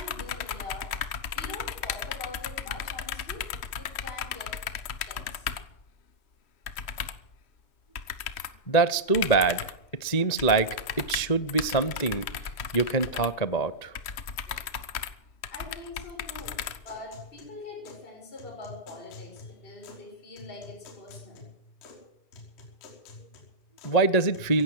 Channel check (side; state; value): right; late; 3.0 ms